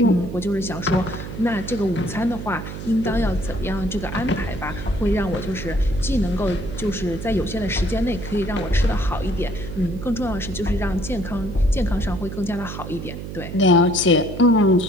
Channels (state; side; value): noise; right; hum, 9 dB below the sound